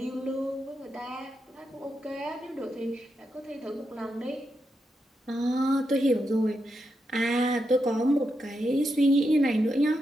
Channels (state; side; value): normal; both; correlation 0.85